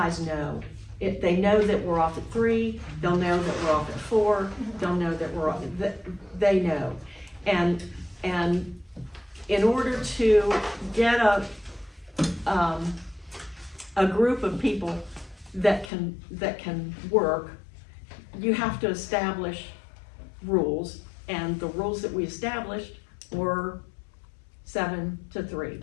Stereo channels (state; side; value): drops out; right; at 15.9 s